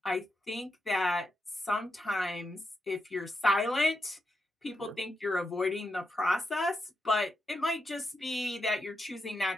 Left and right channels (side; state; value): both; normal; correlation 0.85